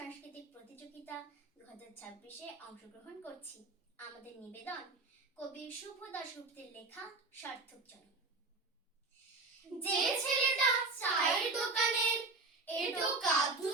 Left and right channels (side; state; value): left; quieter; 3.6 dB